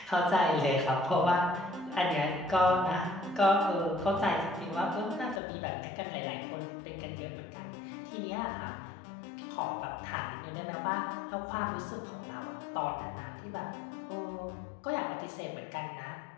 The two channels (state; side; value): drops out; right; at 5.4 s